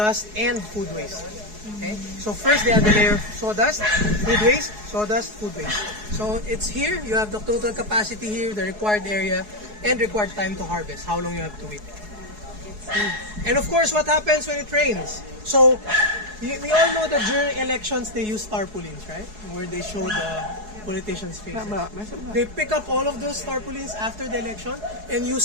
and food waste. Okay? So first they have the layer of sawdust, food waste, sawdust, food waste. So it's here, you have the total capacity here, the required area, and required time to harvest, how long you have to wait. And of course, what happens when it rains? So we all know that during elections they use tarpaulins, right? Where they show the politicians' faces. They pick up all of those tarpaulins after the election and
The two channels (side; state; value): left; late; 4.7 ms